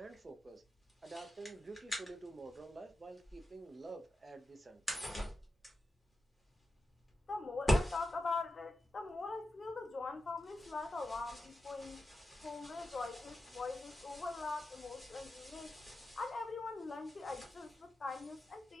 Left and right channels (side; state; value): both; normal; correlation 0.90